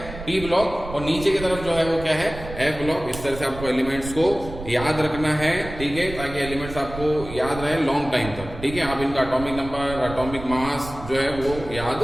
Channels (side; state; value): right; noise; rumble, 11 dB below the sound